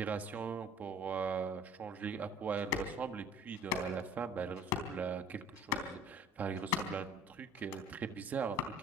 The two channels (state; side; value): normal; both; correlation 0.49